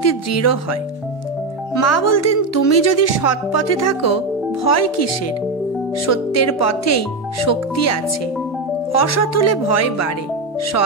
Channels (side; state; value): left; quieter; 3.5 dB